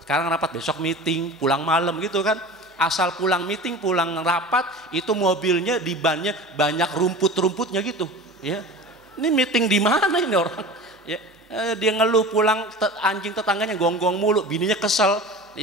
rapat besok meeting, pulang malam gitu kan. Asal pulang meeting, pulang rapat, itu mobilnya di bannya banyak rumput-rumputnya gitu, ya. Ini meeting di mana ini orang, ya. Dia ngeluh pulang, anjing tetangganya gonggong mulu, bininya kesel,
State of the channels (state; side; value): normal; both; correlation 0.35